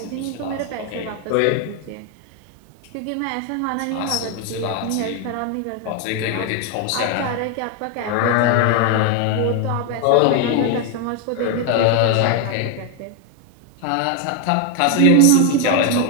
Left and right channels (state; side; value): different; both; correlation 0.01